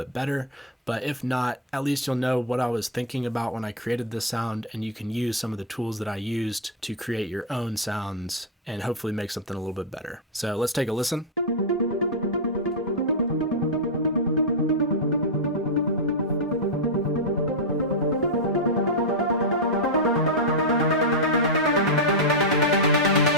better, but if not, at least you'll know what I was thinking about when I created this sound, and you can use some of the tools that I used to create your own sounds and hopefully make something a little bit better. So let's take a listen.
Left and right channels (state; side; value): normal; both; correlation 0.00